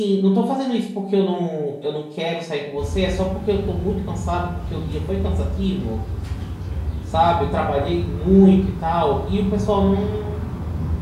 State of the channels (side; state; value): both; identical; correlation 1.00